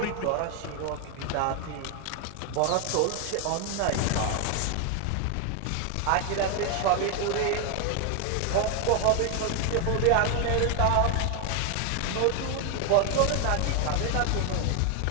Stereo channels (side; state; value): both; different; correlation 0.01